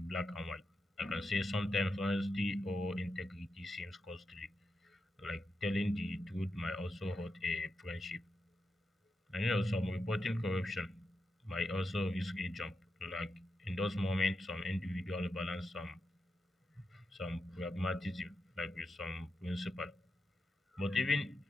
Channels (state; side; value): normal; both; correlation 0.87